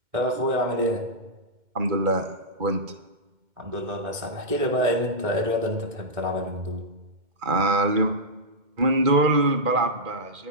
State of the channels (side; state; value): left; late; 2.1 ms